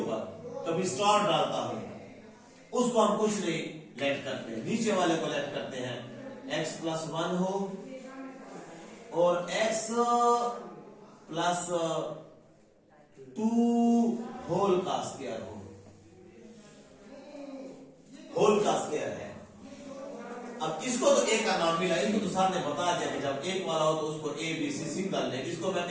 कभी स्टार डालता हूं, उसको हम कुछ नहीं लेट करते हैं, नीचे वाले को लेट करते हैं। x प्लस 1 हो और x प्लस 2 होल का स्क्वायर हो, होल का स्क्वायर है। अब इसको तो ए का नाम मिला, इनको तो सर ने बता दिया कि जब एक वाला हो तो उसको A B C single name, इसको मैं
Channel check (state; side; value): identical; both; correlation 1.00